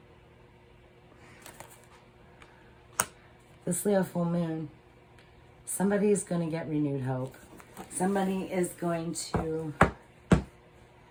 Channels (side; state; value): both; identical; correlation 1.00